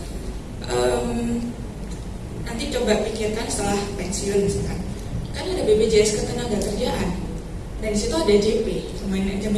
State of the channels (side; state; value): both; identical; correlation 1.00